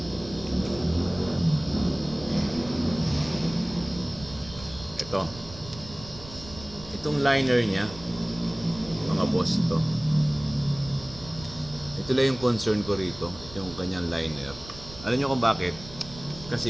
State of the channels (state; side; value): noise; right; rumble, 16 dB below the sound